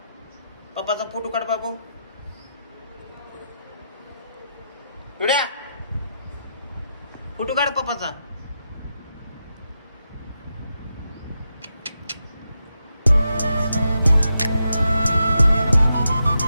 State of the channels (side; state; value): both; inverted; correlation -0.85